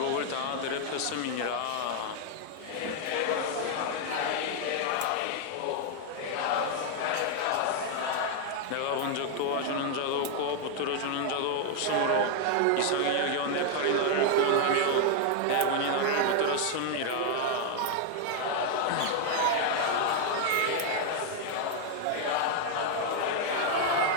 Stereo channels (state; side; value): different; both; correlation 0.00